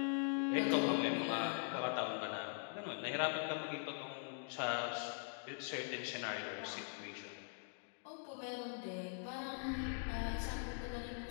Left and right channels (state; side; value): silent; right; digital silence